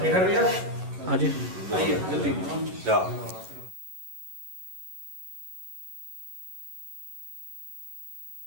हाँ जी आइए जल्दी।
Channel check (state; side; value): late; left; 11 ms